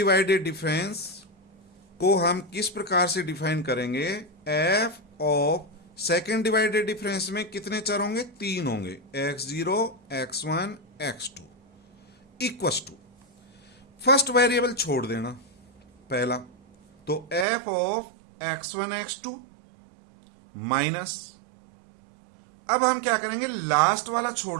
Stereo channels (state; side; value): drops out; left; at 17.4 s